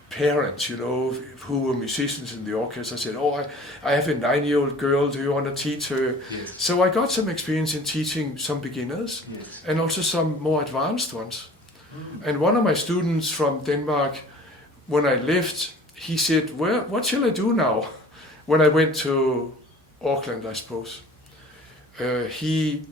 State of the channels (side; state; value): both; normal; correlation 0.47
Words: parents, you know, who were musicians in the orchestra, said, oh, I have a 9-year-old girl, do you want to teach her? Yes. So I got some experience in teaching some beginners and also some more advanced ones. And one of my students from Denmark, when I left, he said, what shall I do now? When I went to Auckland, I suppose.